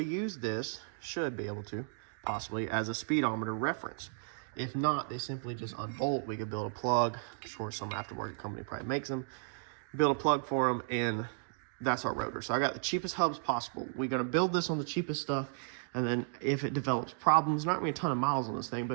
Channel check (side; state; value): left; silent; digital silence